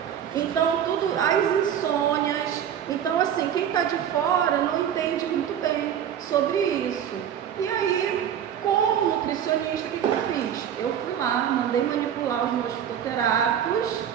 Então, tudo, as insônias. Então, assim, quem está de fora não entende muito bem sobre isso. E aí, como nutricionista, o que eu fiz? Eu fui lá, mandei manipular os meus fitoterápicos,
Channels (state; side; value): quieter; left; 9.3 dB